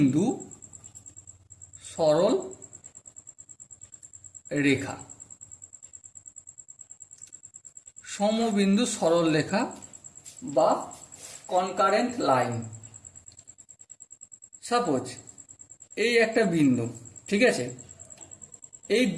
সরল রেখা। সমবিন্দু সরল রেখা বা কনকারেন্ট লাইন। সাপোজ এই একটা বিন্দু, ঠিক আছে? এই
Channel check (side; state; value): both; identical; correlation 1.00